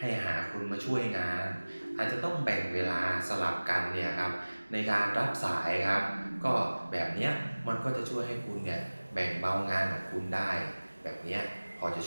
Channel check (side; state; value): both; inverted; correlation -1.00